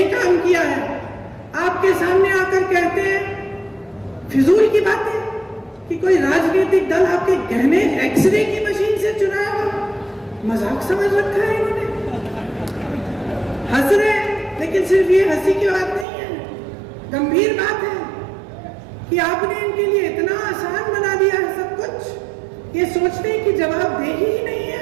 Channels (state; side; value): drops out; left; at 16.1 s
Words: काम किया है, आपके सामने आकर कहते हैं फिजूल की बातें कि कोई राजनीतिक दल आपके गहने एक्सरे की मशीन से चुनाया हो। मजाक समझ रखा है इन्होंने, हंस रहे हैं, लेकिन सिर्फ ये हंसी की बात नहीं है, गंभीर बात है कि आपने इनके लिए इतना आसान बना दिया है सब कुछ। ये सोचते हैं कि जवाबदेही ही नहीं